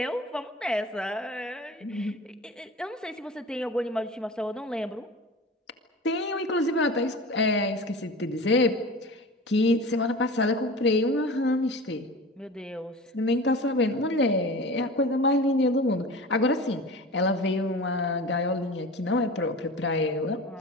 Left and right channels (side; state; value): both; normal; correlation 0.35